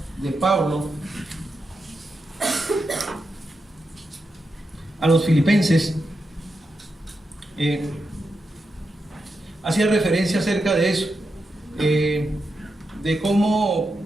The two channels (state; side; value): normal; both; correlation 0.87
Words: de Pablo a los filipenses hacía referencia acerca de eso, de cómo